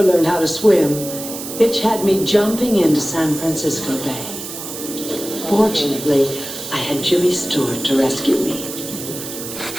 learned how to swim, Hitch had me jumping into San Francisco Bay. Fortunately, I had Jimmy Stewart to rescue me.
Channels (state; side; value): noise; right; hiss, 9 dB below the sound